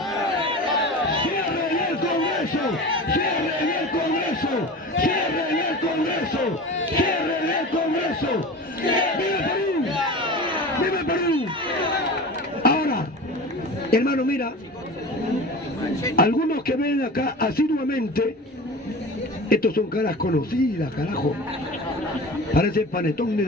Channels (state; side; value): normal; both; correlation 0.33